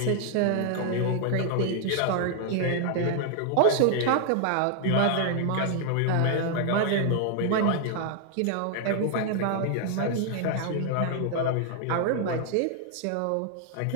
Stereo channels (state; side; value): different; both; correlation 0.00